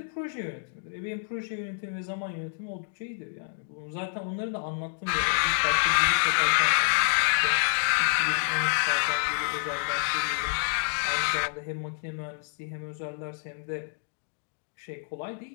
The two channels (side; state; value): right; silent; digital silence